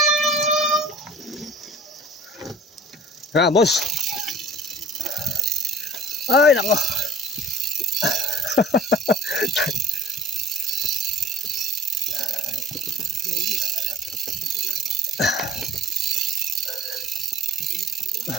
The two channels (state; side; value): normal; both; correlation 0.47